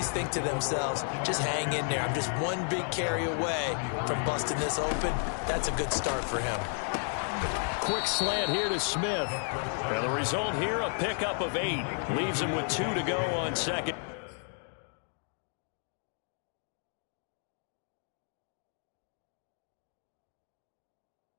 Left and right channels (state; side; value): silent; right; 56 dB below the other